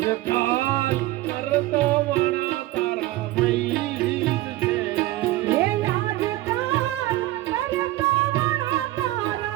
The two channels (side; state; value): left; quieter; 16.8 dB